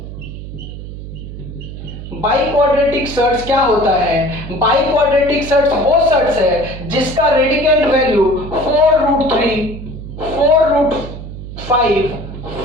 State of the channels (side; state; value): right; noise; hum, 11 dB below the sound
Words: biquadratic surds क्या होता है? बाई क्वाड्रेटिक सर्ट्स वो सर्ट्स है जिसका रेडिकेंड वैल्यू 4√3, 4√5,